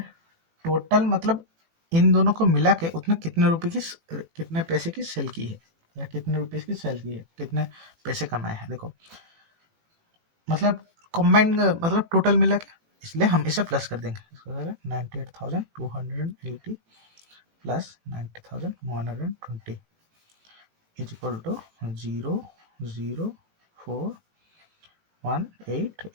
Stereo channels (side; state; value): left; late; 18 ms